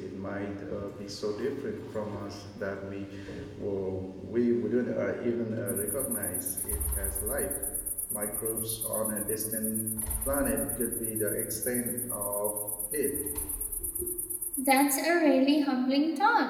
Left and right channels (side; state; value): both; identical; correlation 1.00